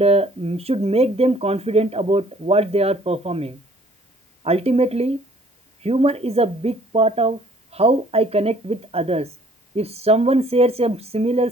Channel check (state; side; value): normal; both; correlation 0.58